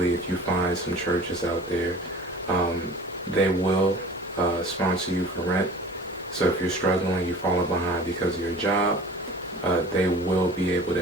if you find some churches out there, they will sponsor you for rent. So if you're struggling, you're falling behind because of your job, they will be able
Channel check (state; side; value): normal; both; correlation 0.42